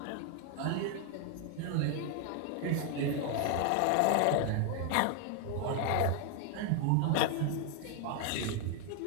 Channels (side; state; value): both; different; correlation 0.00